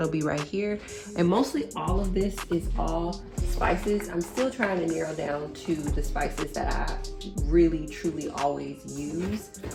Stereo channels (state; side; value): identical; both; correlation 1.00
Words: be right here. And mostly all of this is all spices. I'm still trying to narrow down to the spices that I really truly always use